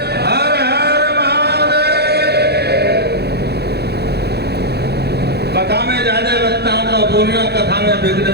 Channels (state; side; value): late; left; 0.48 ms